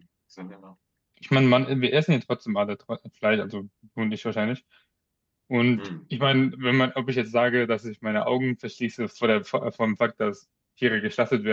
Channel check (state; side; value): identical; both; correlation 1.00